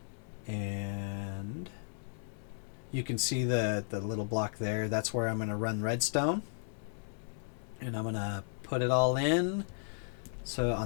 And you can see the little block there. That's where I'm going to run redstone. And I'm going to put it all in. So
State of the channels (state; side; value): silent; right; digital silence